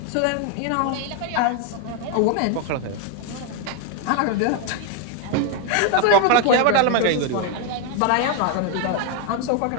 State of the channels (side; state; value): both; different; correlation 0.01